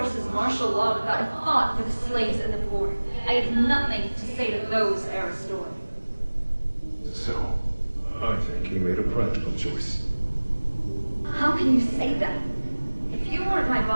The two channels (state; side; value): inverted; both; correlation -1.00